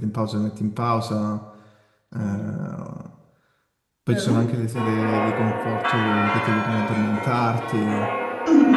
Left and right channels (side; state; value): both; identical; correlation 1.00